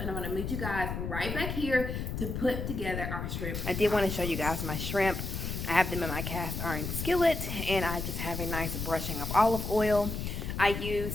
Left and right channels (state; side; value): noise; left; rumble, 4 dB below the sound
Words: and I'm gonna meet you guys right back here to put together our shrimp. I did want to show you guys my shrimp. I have them in my cast iron skillet, and I just have a nice brushing of olive oil. I